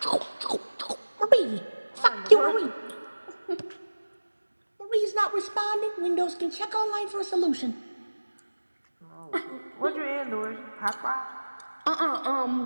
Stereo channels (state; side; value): inverted; both; correlation -1.00